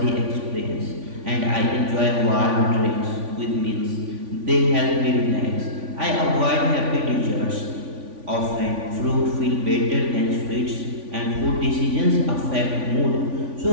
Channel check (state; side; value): late; left; 3.5 ms